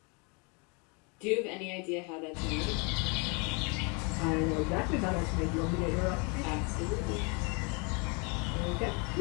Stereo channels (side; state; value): right; quieter; 32.6 dB